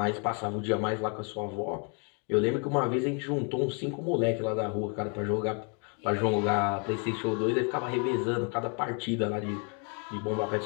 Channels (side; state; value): right; quieter; 37.5 dB